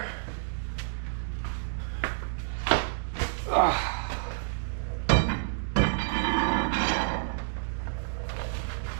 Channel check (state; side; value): silent; left; digital silence